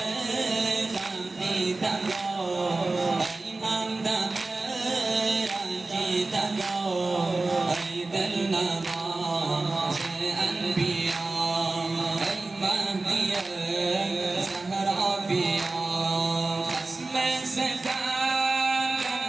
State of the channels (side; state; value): left; quieter; 3.3 dB